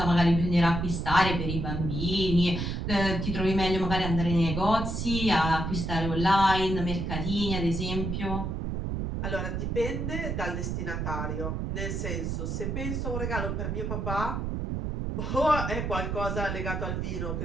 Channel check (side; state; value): right; noise; rumble, 2 dB below the sound